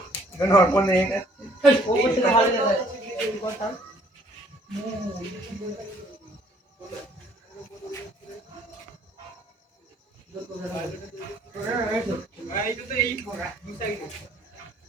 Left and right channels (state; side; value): normal; both; correlation 0.61